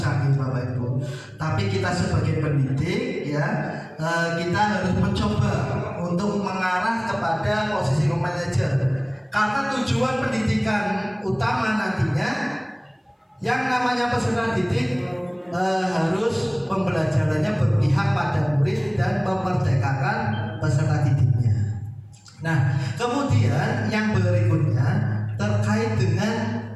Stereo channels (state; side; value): identical; both; correlation 1.00